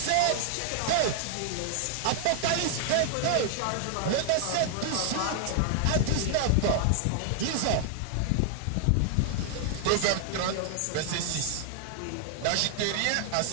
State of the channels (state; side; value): different; both; correlation 0.00